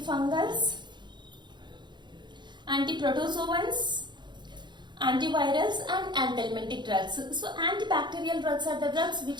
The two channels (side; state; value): left; late; 0.22 ms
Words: antiprotozoans, antivirals and anthelmintic drugs. So antibacterial drugs are the drugs